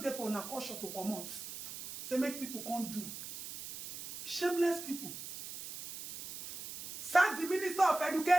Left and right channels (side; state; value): right; noise; hiss, 10 dB below the sound